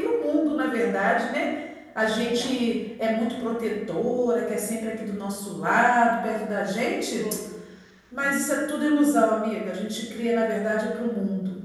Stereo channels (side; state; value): both; identical; correlation 1.00